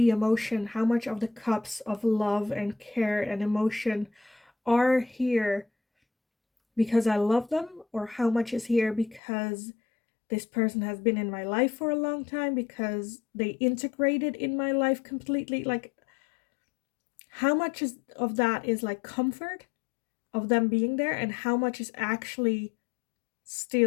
emotion, how much of the cups of love and care and emotion are here because I love them, or how much is here because this person has been in my life for a long time, because they integrated in my life completely. Like, how much of that is like comfort of them being there, and how much is actually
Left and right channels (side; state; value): right; drops out; at 9.2 s